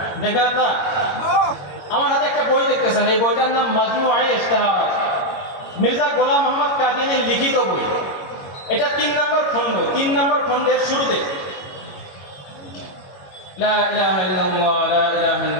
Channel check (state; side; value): late; right; 21 ms